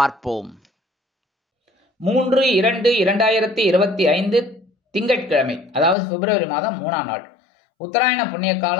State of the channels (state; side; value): drops out; right; at 6.0 s